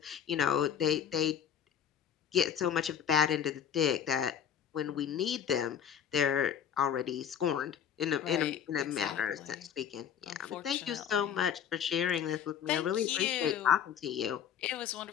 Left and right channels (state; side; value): quieter; right; 8.7 dB